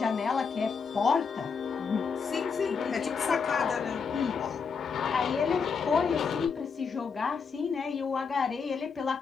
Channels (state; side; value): quieter; right; 5.7 dB